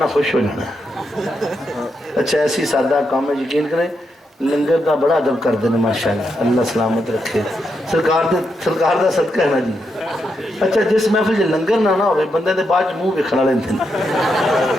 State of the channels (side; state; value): both; normal; correlation 0.82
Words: خوش ہو جانا. اچھا ایسی سادہ کام ہے, یقین کریں لنگر دا بڑا ادب کر دینا ماشاءاللہ, اللہ سلامت رکھے. سرکار دا صدقہ ہے نا جی. اچھا جس محفل جی لنگر نہ ہوئے, بندے دے بعد منہ ویکھنا لیندے نے,